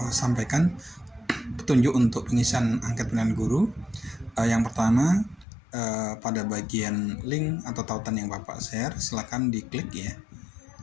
sampaikan petunjuk untuk pengisian angket pilihan guru. Yang pertama, pada bagian link atau tautan yang Bapak share, silakan diklik ya.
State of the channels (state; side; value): drops out; right; at 5.5 s